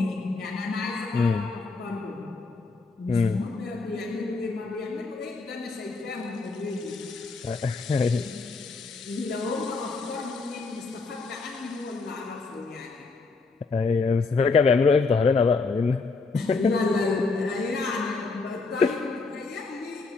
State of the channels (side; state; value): right; quieter; 4.1 dB